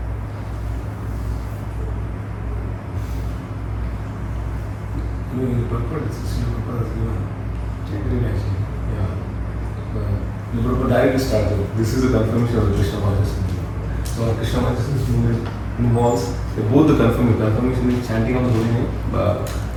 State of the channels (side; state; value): both; identical; correlation 1.00